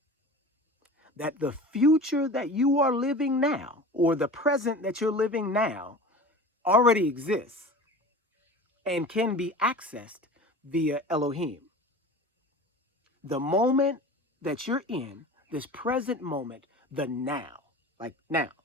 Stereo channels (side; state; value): both; normal; correlation 0.37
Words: That the future that you are living now, or the present that you're living now, already exists and can be accessed via Elohim. The moment that you're in, this present moment, the now, like now,